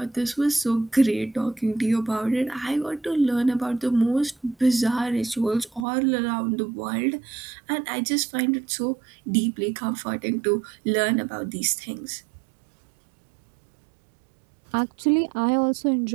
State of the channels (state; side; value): drops out; left; at 5.9 s